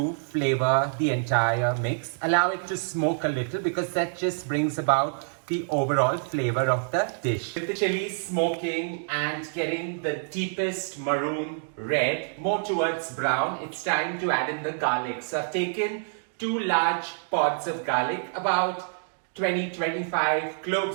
flavor the entire mix. Allow it to smoke a little because that just brings about the overall flavor of the dish. With the chilies smoking and getting the deepest maroon red, more towards brown, it's time to add in the garlic. So I've taken 2 large pods of garlic, about 20-25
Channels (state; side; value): silent; left; digital silence